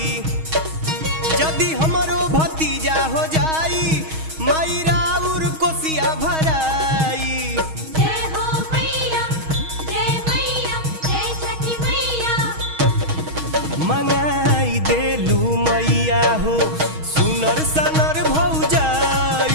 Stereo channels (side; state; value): left; late; 6.3 ms